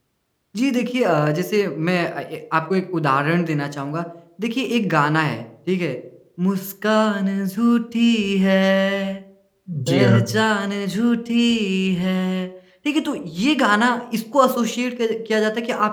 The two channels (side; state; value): both; identical; correlation 1.00